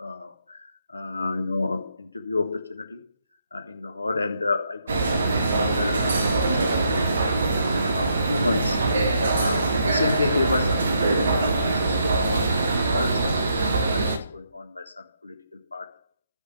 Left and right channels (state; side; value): inverted; both; correlation -0.75